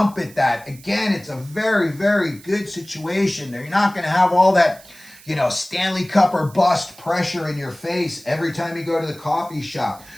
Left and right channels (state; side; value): noise; right; hiss, 22 dB below the sound